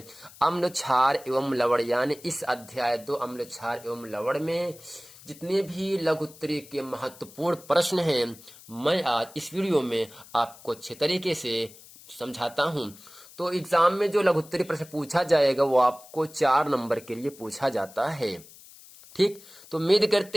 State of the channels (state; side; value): noise; left; hiss, 21 dB below the sound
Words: अम्ल क्षार एवं लवण। यानी इस अध्याय 2 अम्ल क्षार एवं लवण में जितने भी लघुत्तरी के महत्वपूर्ण प्रश्न हैं, मैं आज इस वीडियो में आपको अच्छे तरीके से समझाता हूं। तो एग्जाम में जो लघुत्तरी प्रश्न पूछा जाएगा वो आपको 4 नंबर के लिए पूछा जाता है। ठीक, तो उम्मीद